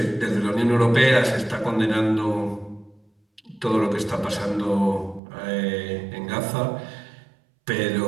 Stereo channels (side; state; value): left; drops out; at 5.2 s